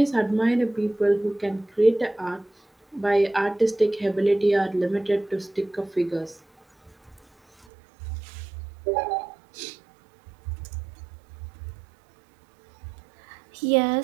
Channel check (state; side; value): drops out; left; at 7.7 s